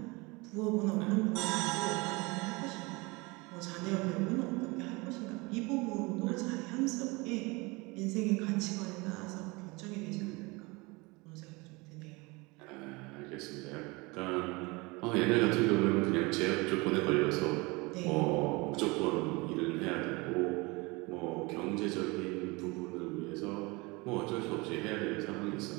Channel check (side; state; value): left; quieter; 25.3 dB